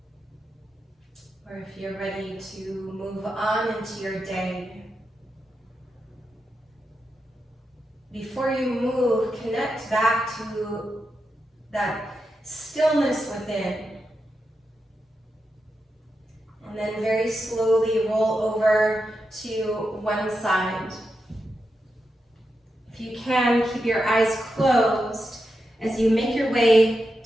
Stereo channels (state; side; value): normal; both; correlation 0.87